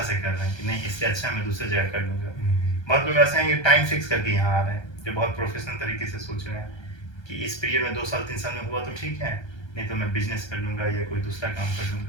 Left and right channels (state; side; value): late; right; 1.3 ms